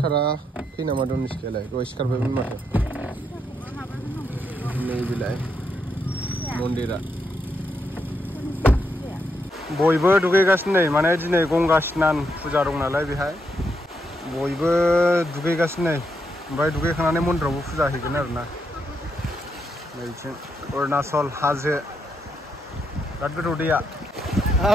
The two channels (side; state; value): both; normal; correlation 0.80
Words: नामा दं सिखायालाय दहाय सिखारबायमोन माथो नैबेलाय मन्दिरा बयबो दुगैगासिनो नै माने दिनै गंगा स्नान फुजा दं नालाय बेहाय बयबो दुगैगासिनो नै ओमफ्राय दुगैखांनानै मन्दिरावबो फुजा हैगोन आरोना नैथिं अरुणाचल हाजो बिराद गोथौ दैया